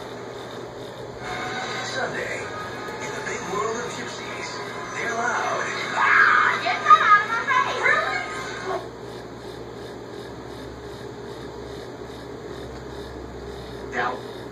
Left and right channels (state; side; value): identical; both; correlation 1.00